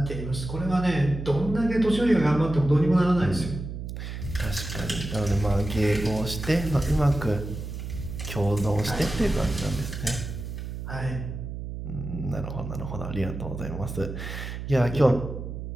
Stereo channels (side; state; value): right; noise; hum, 7 dB below the sound